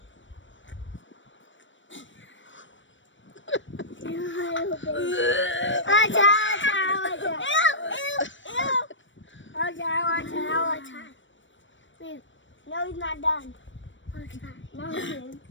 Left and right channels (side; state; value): right; late; 0.55 ms